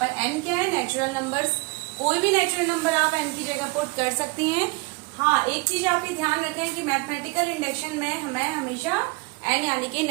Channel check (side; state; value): left; quieter; 27.5 dB